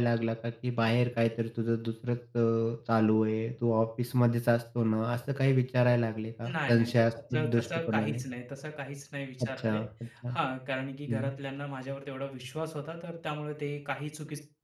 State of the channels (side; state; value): both; identical; correlation 1.00